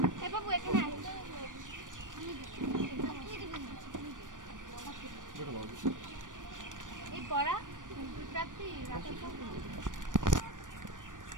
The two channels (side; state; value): left; late; 0.88 ms